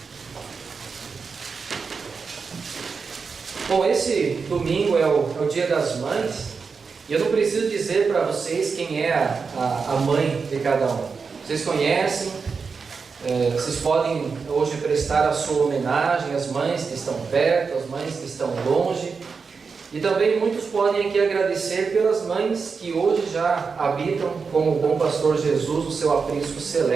Bom, esse domingo é o Dia das Mães, e eu não preciso dizer para vocês quem é a mãe de cada um. Vocês conhecem, vocês podem hoje prestar a sua homenagem às mães que estão perto, às mães que estão longe, e também muitos podem aqui agradecer pelas mães que hoje já habitam com o bom pastor Jesus o seu aprisco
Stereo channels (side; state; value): left; quieter; 5.2 dB